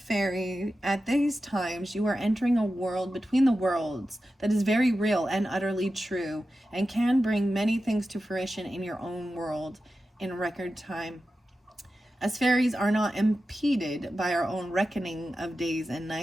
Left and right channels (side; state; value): both; normal; correlation 0.92